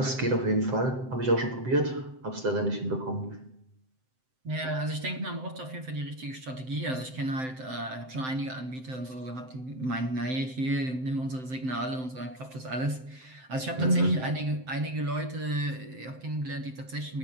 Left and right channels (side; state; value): left; late; 7.8 ms